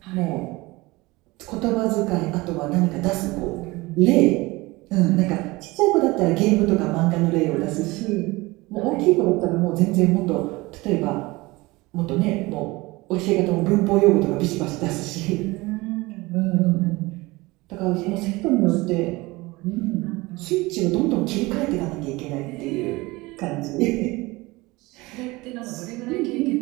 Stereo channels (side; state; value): left; quieter; 22.0 dB